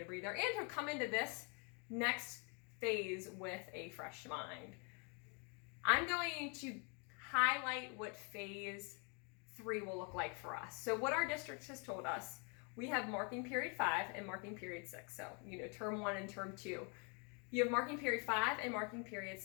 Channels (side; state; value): right; quieter; 35.7 dB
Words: a breather and to come into this next phase with a fresh mind. I'm going to highlight what phase 3 will look like for us. So what our district has told us, we have marking period 5 and marking period 6. So, term 1 and term 2. You have marking period 5 and marking period